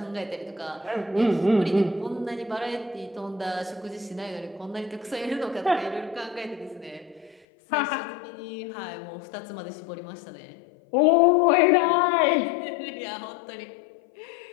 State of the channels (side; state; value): right; drops out; at 7.4 s